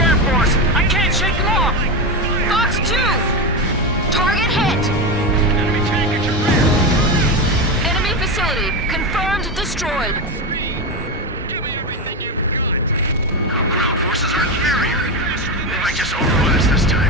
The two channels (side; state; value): both; normal; correlation 0.15